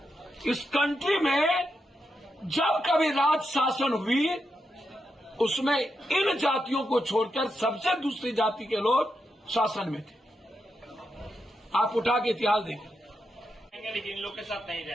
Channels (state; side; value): normal; both; correlation 0.85